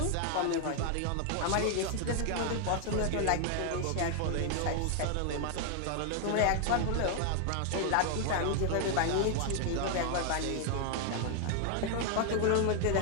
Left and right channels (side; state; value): both; different; correlation 0.00